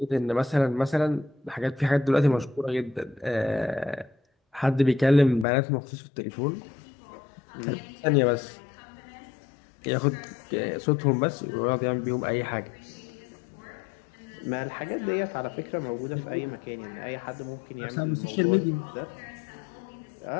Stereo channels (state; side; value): drops out; right; at 5.5 s